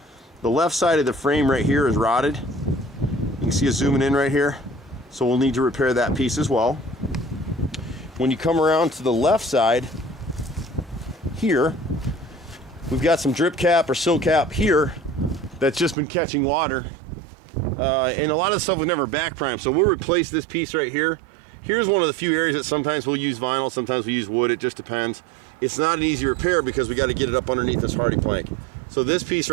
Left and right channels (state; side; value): drops out; left; at 16.0 s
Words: The left side of the frame right here is rotted. You can see it zooming in right here. So we'll need to repair that piece as well. When you come around to the left side here, we've got some drip cap or sill cap here that's just been catching water. And a lot of the stuff was never back primed, so we'll replace this piece right here. Here's one of the few areas that sometimes we'll use vinyl, sometimes we use wood, it just depends. It's not an easy repair because we got to get it up underneath this hardy plank. So this piece